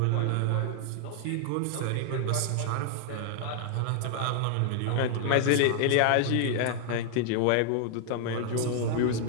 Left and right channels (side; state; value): both; different; correlation 0.00